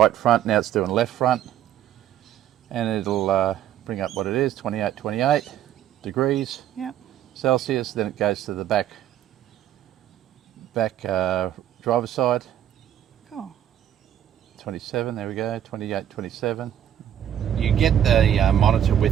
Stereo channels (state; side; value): quieter; left; 10.7 dB